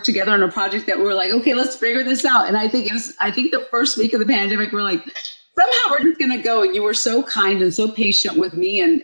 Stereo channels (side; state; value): both; inverted; correlation -1.00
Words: together on a project that we were like, okay, let's figure this out. And I think the first week of the pandemic, we're like, somehow we're just gonna go. And you were so kind and so patient with me and